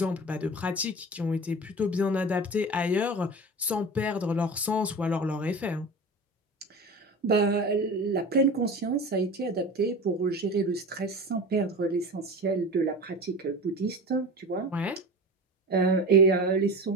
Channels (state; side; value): normal; both; correlation 0.32